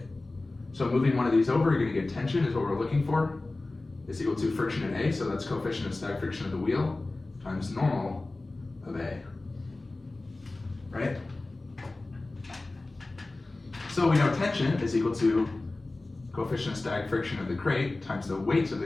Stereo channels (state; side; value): quieter; right; 3.1 dB